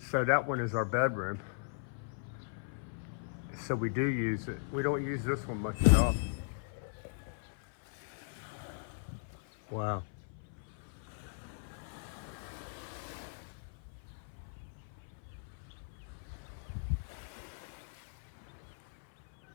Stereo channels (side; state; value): right; silent; 52 dB below the other